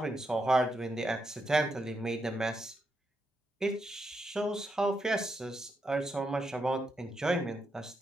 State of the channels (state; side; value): normal; both; correlation 0.82